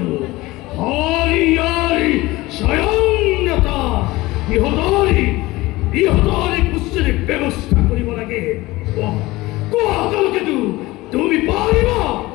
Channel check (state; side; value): quieter; right; 19.7 dB